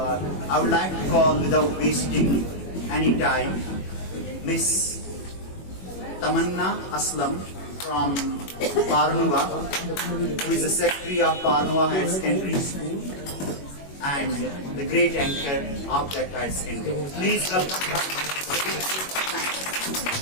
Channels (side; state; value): right; late; 21 ms